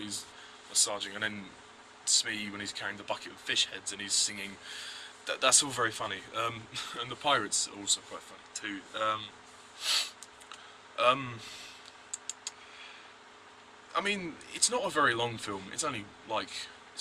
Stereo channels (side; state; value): both; identical; correlation 1.00